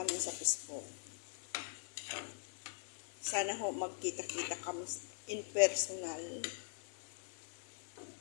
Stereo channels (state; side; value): silent; right; digital silence